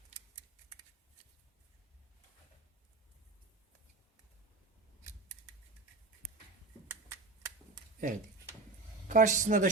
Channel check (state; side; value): quieter; left; 3.6 dB